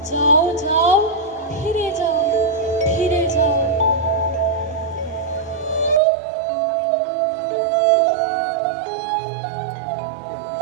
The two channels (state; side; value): drops out; left; at 6.0 s